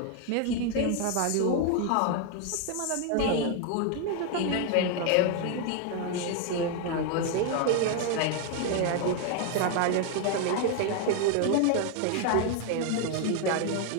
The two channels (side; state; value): both; different; correlation 0.01